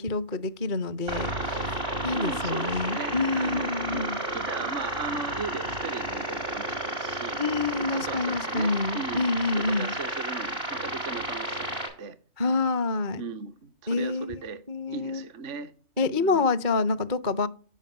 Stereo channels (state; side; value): late; left; 2.3 ms